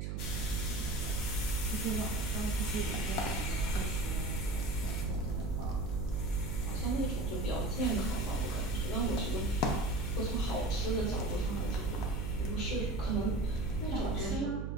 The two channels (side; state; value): right; noise; hum, 2 dB below the sound